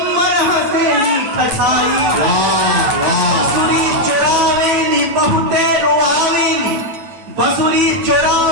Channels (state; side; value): late; left; 9.2 ms